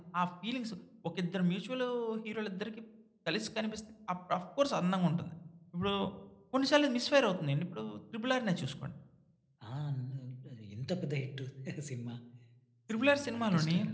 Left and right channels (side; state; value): both; identical; correlation 1.00